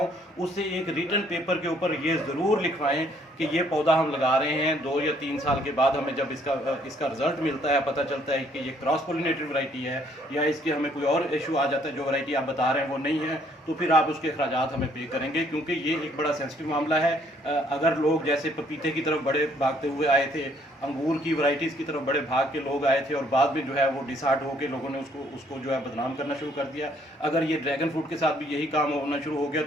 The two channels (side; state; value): both; normal; correlation 0.65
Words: उससे एक रिटन पेपर के ऊपर ये ज़रूर लिखवाएं कि ये पौधा हम लगा रहे हैं 2 या 3 साल के बाद हमें जब इसका रिजल्ट मिलता है, पता चलता है कि ये क्रॉस पोलिनेटेड वैरायटी है या इसके हमें कोई और इशू आ जाता है, जो वैरायटी आप बता रहे हैं वो नहीं है, तो फिर आप उसके अखराजात हमें पे करेंगे, क्योंकि ये एक बड़ा सेंसिटिव मामला है। अगर लोग जैसे पपीते की तरफ बड़े भागते हुए आए थे, अंगूर की वैरायटीज़ की तरफ बड़े भाग के लोग आए थे और बाद में जो है वो डिसहार्ट होकर लोगों ने उसको जो है बदनाम करना शुरू कर दिया, अगर ये ड्रैगन फ्रूट के साथ भी यही काम होना शुरू हो गया